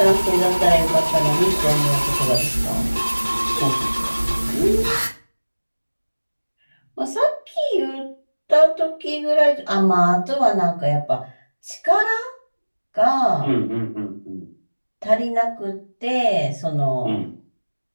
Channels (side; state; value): both; inverted; correlation -1.00